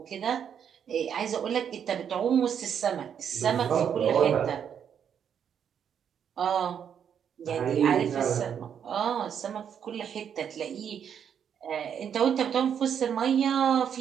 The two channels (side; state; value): left; quieter; 8.2 dB